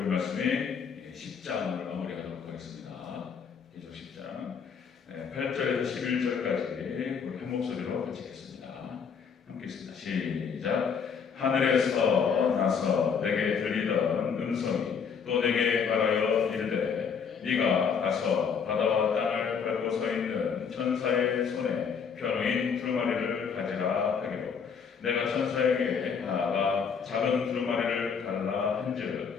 말씀이 10장을 마무리하도록 하겠습니다. 계속 10장 8절에서 11절까지 우리 한 목소리로 같이 읽겠습니다. 함께 읽습니다. 시작. 하늘에서 나서 내게 들리던 음성이 또 내게 말하여 이르되 네가 가서 바다와 땅을 밟고 서 있는 천사의 손에 펴놓인 두루마리를 가지라 하기로 내가 천사에게 나아가 작은 두루마리를 달라 한즉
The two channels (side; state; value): right; quieter; 6.5 dB